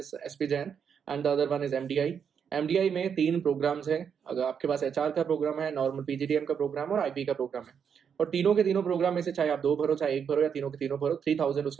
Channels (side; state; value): left; quieter; 7.3 dB